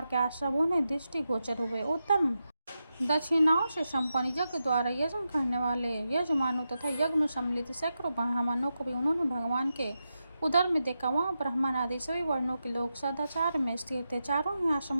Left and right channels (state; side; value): inverted; both; correlation -0.89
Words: के आश्रमों ने दृष्टिगोचर हुए। उत्तम दक्षिणाओं से संपन्न यज्ञ द्वारा यज्ञ करने वाले यजमानों तथा यज्ञ में सम्मिलित सैकड़ों ब्राह्मणों को भी उन्होंने भगवान के उदर में देखा। वहाँ ब्राह्मण आदि सभी वर्णों के लोग सदाचार में स्थिर थे। चारों ही